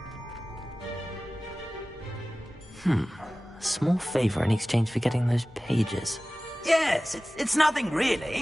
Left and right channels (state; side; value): normal; both; correlation 0.97